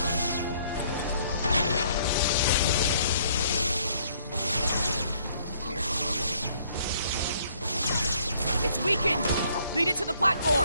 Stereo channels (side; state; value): both; inverted; correlation -0.64